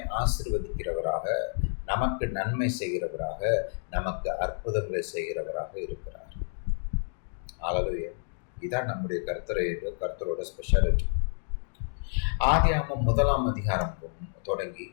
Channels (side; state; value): right; silent; digital silence